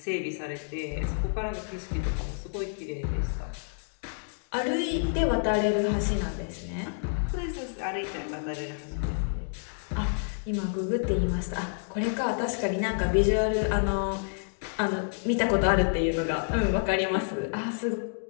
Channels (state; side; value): silent; right; digital silence